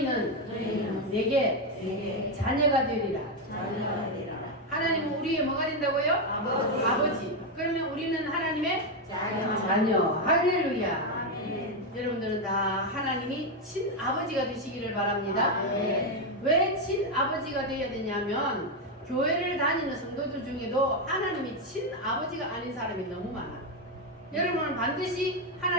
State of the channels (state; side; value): normal; both; correlation 0.05